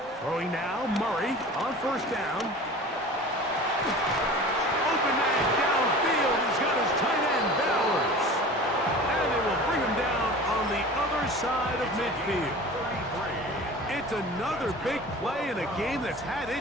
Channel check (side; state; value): both; normal; correlation 0.39